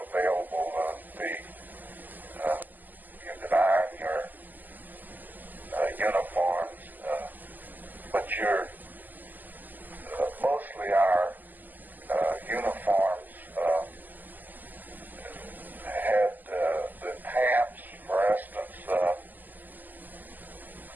but mostly our uniforms had the pants, for instance.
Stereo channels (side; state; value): left; late; 0.085 ms